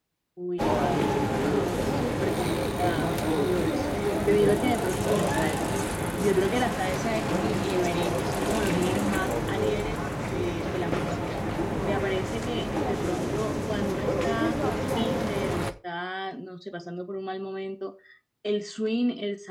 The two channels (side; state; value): both; identical; correlation 1.00